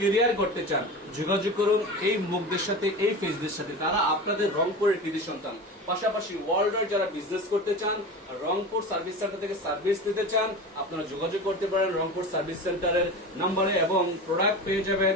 করতে চান, যোগাযোগ করুন এই মুখদের সাথে, এই ফেসদের সাথে। তারা আপনাদের রংপুরের কৃতি সন্তান। পাশাপাশি ওয়ার্ল্ডের যারা বিজনেস করতে চান, রংপুর সার্ভিস সেন্টার থেকে সার্ভিস নিতে চান, আপনারা যোগাযোগ করতে পারেন রংপুর সার্ভিস সেন্টারের নম্বরে এবং প্রোডাক্ট পেয়ে যাবেন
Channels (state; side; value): normal; both; correlation 0.30